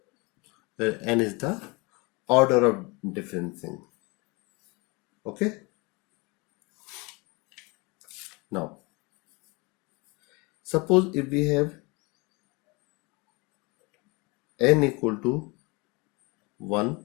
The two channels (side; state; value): right; quieter; 27.3 dB